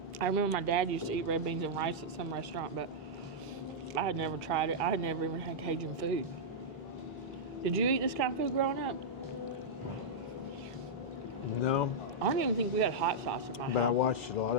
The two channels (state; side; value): normal; both; correlation -0.08